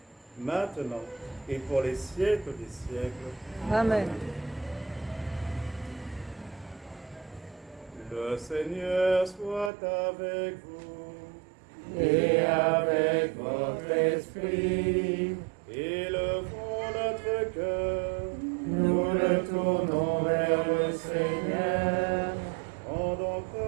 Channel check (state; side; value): drops out; left; at 9.7 s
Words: maintenant et pour les siècles des siècles. Amen. Le Seigneur soit avec vous. Et avec votre esprit, Élevons notre cœur. nous le tournons vers le Seigneur. Rendons